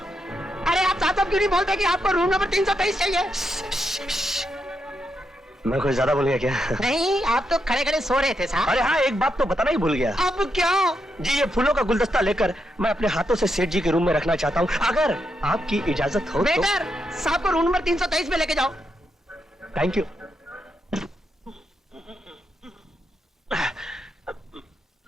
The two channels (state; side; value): normal; both; correlation 0.82